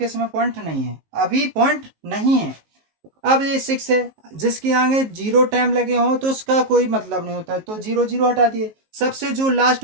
इसमें पॉइंट नहीं है, अभी पॉइंट नहीं है। अब ये 6 है, जिसके आगे 0 टाइम लगे हो तो उसका कोई मतलब नहीं होता है, तो 0 0 हटा दिए। सबसे जो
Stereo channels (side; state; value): left; late; 19 ms